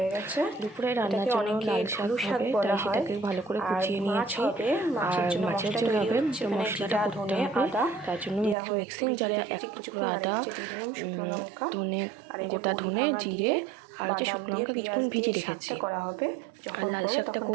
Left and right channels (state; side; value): drops out; left; at 8.6 s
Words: দুপুরে রান্নার জন্য লাল শাক হবে, তাই সেটাকে ভালো করে কুচিয়ে নিয়েছি। আর মাছের জন্য হবে, তো মশলাটা করতে হবে। তার জন্য মিক্সিং জারে এক টুকরো আদা, ধনে, গোটা ধনে, জিরে আর হচ্ছে শুকনো লঙ্কা কিছুক্ষণ ভিজে রেখেছি করা হবে। আর লাল শাকটা